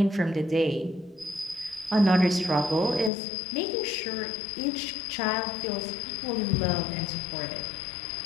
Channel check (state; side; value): drops out; right; at 3.1 s